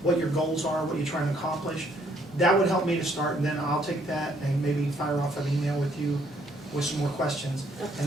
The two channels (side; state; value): both; normal; correlation 0.67